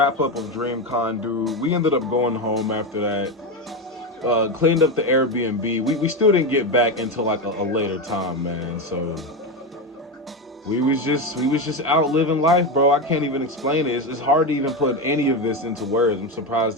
up of DreamCon, dude. We ended up going home after that. Cleaned up the Airbnb. We still didn't get back until like a later time, man. So we was just out living life, bro. I can't even explain it. It's hard to even put any of this into words. I'm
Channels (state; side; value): normal; both; correlation 0.15